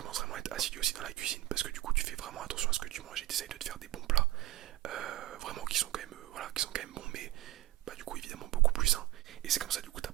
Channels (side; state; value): left; quieter; 15.9 dB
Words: vraiment à être assidu aussi dans la cuisine, parce que du coup, tu fais vraiment attention à ce que tu manges et t'essayes de te faire des bons plats, vraiment qui sont quand même, qui sont quand même bons, mais bah, du coup, évidemment, beaucoup plus sains. Et c'est comme ça, du coup,